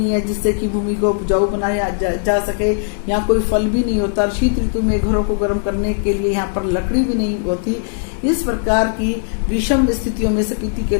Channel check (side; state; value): right; silent; digital silence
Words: है जिससे कि भूमि को उपजाऊ बनाया जा सके, यहाँ कोई फल भी नहीं होता, शीत ऋतु में घरों को गर्म करने के लिए यहाँ पर लकड़ी भी नहीं होती। इस प्रकार की विषम स्थितियों में स्पीति के